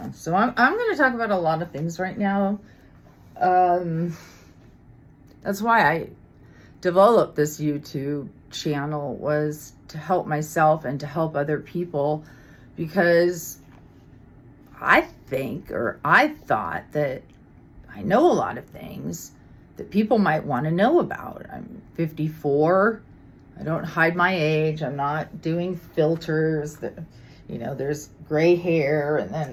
so I'm going to talk about a lot of things right now. That's why I developed this YouTube channel, was to help myself and to help other people, because I thought that I know a lot of things that people might want to know about. I'm 54. I don't hide my age. I'm not doing filters. There's gray hair and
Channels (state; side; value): identical; both; correlation 1.00